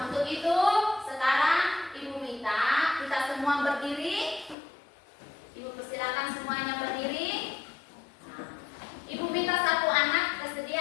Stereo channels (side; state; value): right; drops out; at 4.5 s